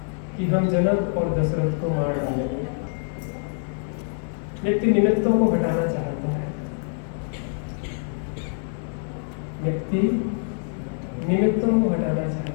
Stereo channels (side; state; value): right; silent; 62 dB below the other